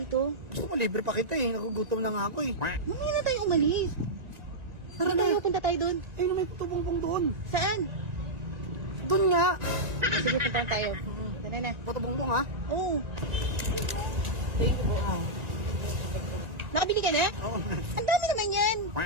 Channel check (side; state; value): left; late; 1.9 ms